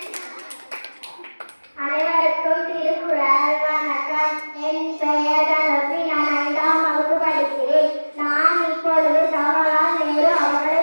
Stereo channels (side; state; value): both; inverted; correlation -1.00